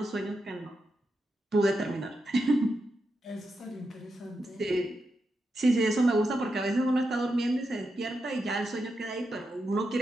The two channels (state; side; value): normal; both; correlation 0.86